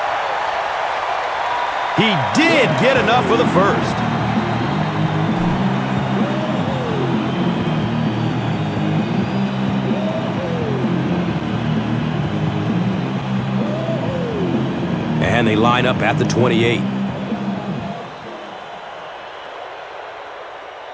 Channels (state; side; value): identical; both; correlation 1.00